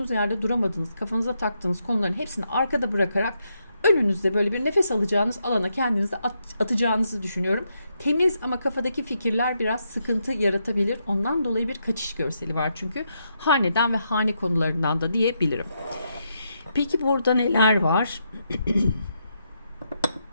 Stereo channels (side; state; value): both; inverted; correlation -0.81